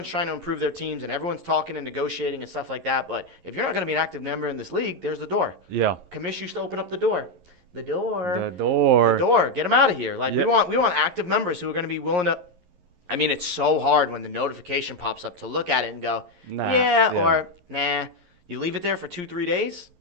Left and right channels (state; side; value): late; left; 11 ms